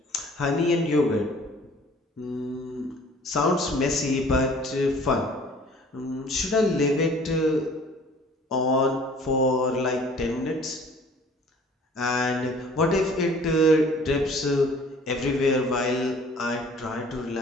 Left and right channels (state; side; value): normal; both; correlation 0.51